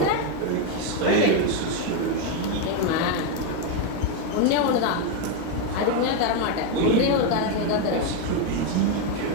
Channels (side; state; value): both; different; correlation 0.02